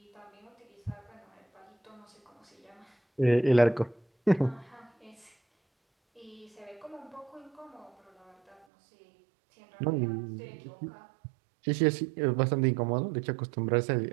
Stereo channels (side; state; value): left; drops out; at 8.7 s